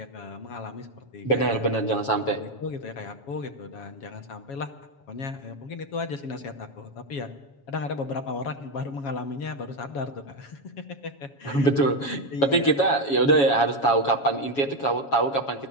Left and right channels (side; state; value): right; late; 7.2 ms